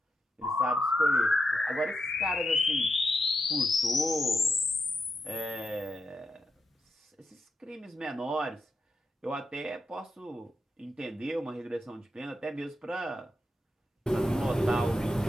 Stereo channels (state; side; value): normal; both; correlation 0.85